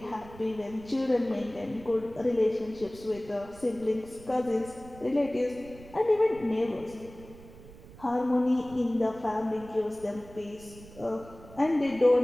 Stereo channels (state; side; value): noise; right; rumble, 19 dB below the sound